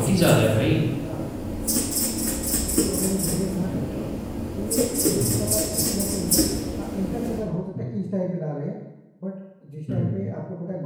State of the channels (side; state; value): both; identical; correlation 1.00